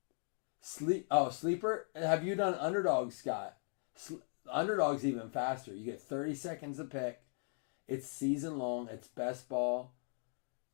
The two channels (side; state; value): right; silent; 52 dB below the other